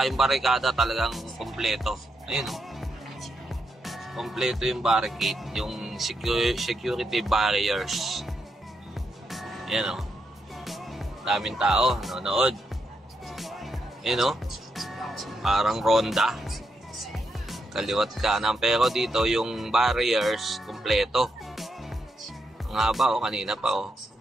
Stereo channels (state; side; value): normal; both; correlation 0.82